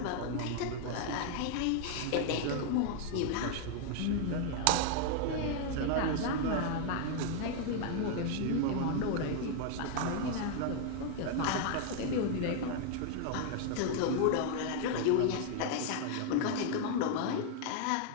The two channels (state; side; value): different; both; correlation 0.00